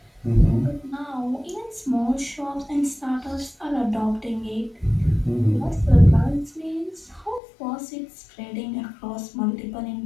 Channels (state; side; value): drops out; right; at 7.4 s